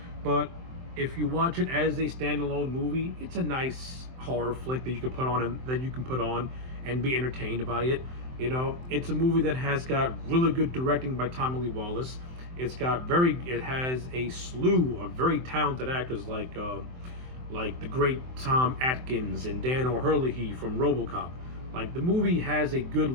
But if you watch it as a standalone movie, it's a nice horror flick that you can put on and be entertained by it. It's a movie that has got really good directing by Tommy Lee Wallace. It has a slew of very talented actors like the great Tom Atkins and Dan O'Herlihy from RoboCop. Like, the movie has a good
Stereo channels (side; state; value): left; late; 23 ms